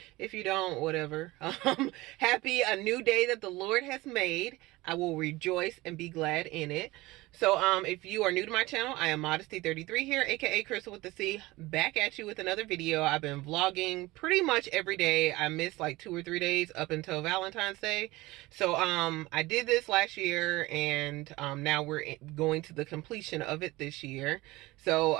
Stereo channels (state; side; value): quieter; left; 20.1 dB